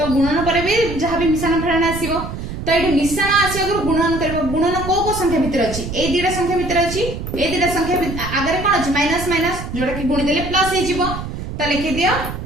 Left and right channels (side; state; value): right; noise; rumble, 7 dB below the sound